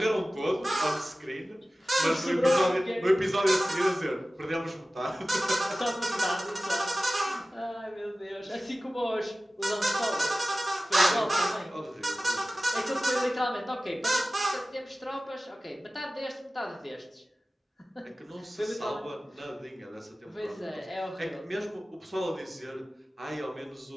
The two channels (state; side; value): normal; both; correlation 0.96